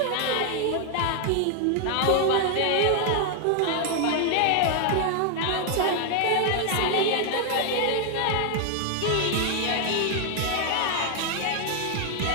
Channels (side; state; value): both; different; correlation 0.00